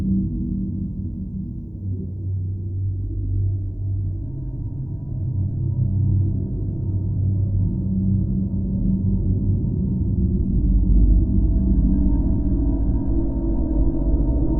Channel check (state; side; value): late; right; 0.17 ms